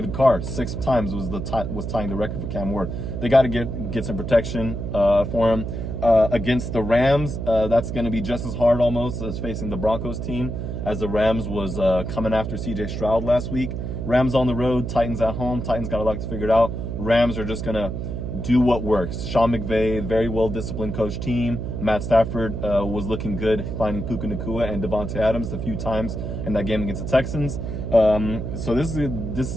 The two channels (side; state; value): right; noise; hum, 4 dB below the sound